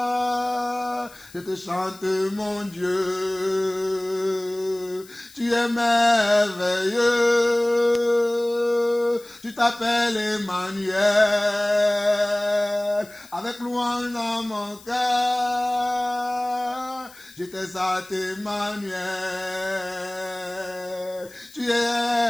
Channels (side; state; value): left; noise; hiss, 23 dB below the sound